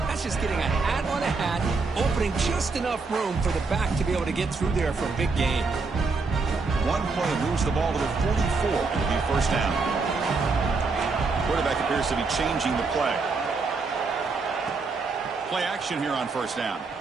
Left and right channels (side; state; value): left; quieter; 4.2 dB